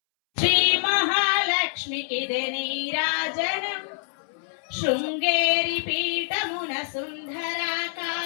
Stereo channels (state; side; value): silent; right; 61 dB below the other